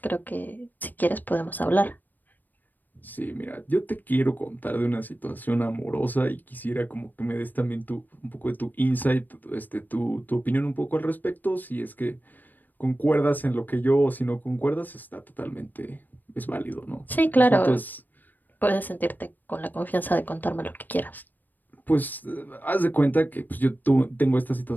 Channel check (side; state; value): right; late; 0.088 ms